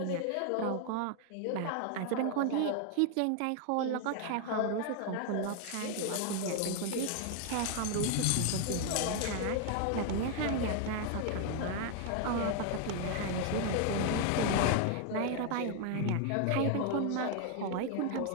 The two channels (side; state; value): both; different; correlation 0.00